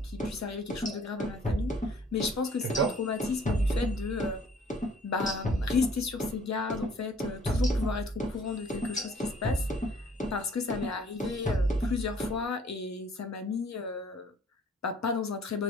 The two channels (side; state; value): both; normal; correlation 0.57